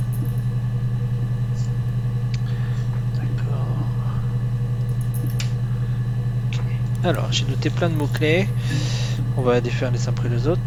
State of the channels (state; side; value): identical; both; correlation 1.00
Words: D'accord. Ok. Alors, j'ai noté plein de mots-clés. On va les faire les uns après les autres.